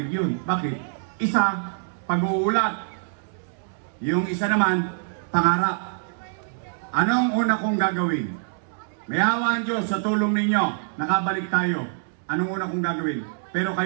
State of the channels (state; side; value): silent; left; digital silence